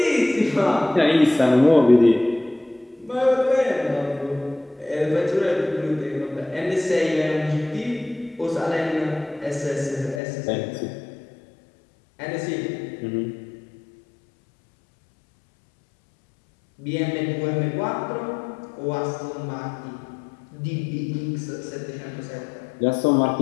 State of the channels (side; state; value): right; drops out; at 10.2 s